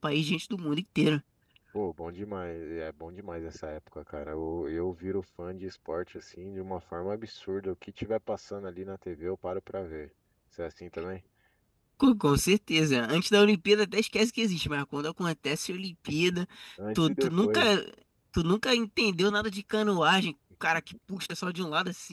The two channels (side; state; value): both; identical; correlation 1.00